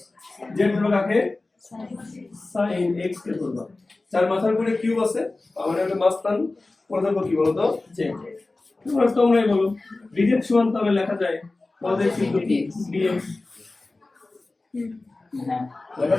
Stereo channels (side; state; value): right; quieter; 3.2 dB